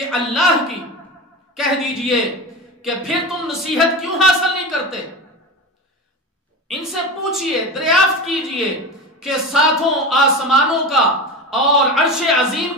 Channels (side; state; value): both; normal; correlation 0.26